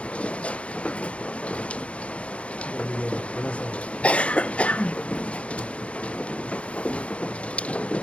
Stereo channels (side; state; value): right; late; 0.062 ms